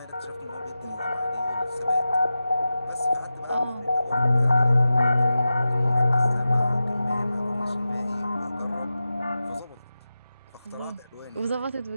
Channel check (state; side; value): inverted; both; correlation -0.94